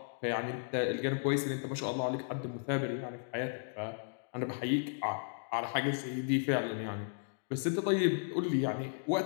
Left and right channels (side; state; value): right; silent; digital silence